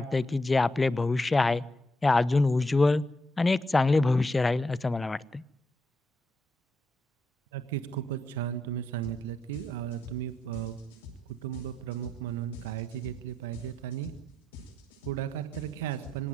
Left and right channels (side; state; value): both; normal; correlation 0.82